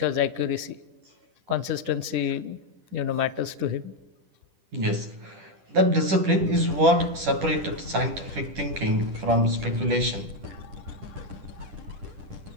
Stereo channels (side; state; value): left; late; 10 ms